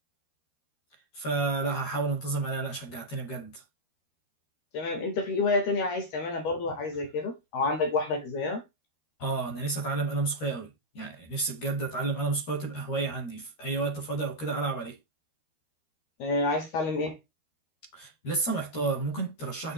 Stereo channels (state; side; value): late; right; 13 ms